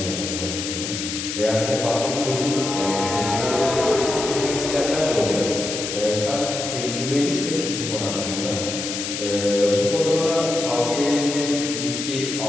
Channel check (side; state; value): left; noise; hiss, 5 dB below the sound